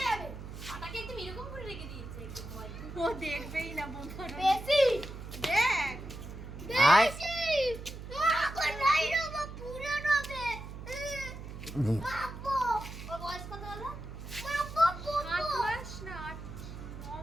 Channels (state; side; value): noise; right; hum, 11 dB below the sound